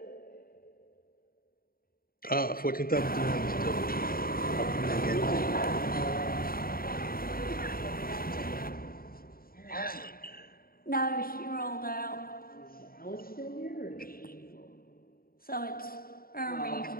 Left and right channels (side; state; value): right; late; 0.43 ms